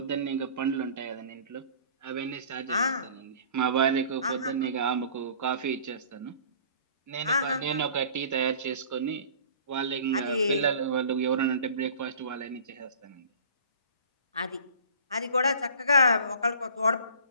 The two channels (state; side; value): inverted; both; correlation -0.47